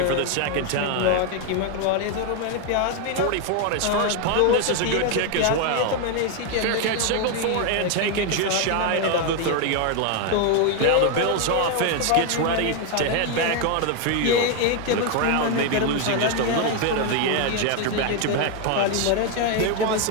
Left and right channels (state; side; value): different; both; correlation 0.01